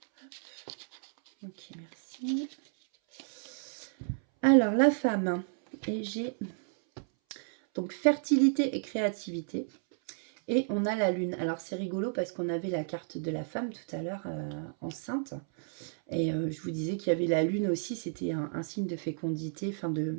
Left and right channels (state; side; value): silent; left; 57 dB below the other